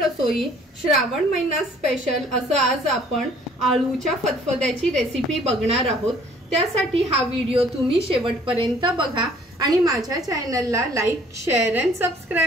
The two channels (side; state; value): both; normal; correlation 0.57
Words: श्रावण महिना special असं आज आपण आळूच्या फतफद्याची रेसिपी बघणार आहोत। त्यासाठी हा व्हिडिओ तुम्ही शेवटपर्यंत बघा आणि माझ्या चॅनलला लाईक, शेअर अँड